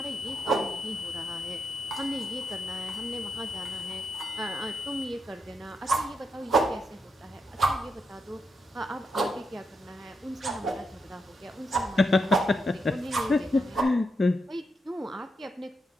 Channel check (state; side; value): normal; both; correlation 0.83